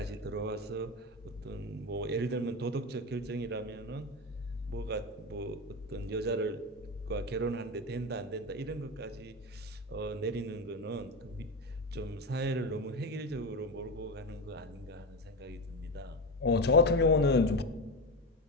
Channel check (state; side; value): normal; both; correlation 0.19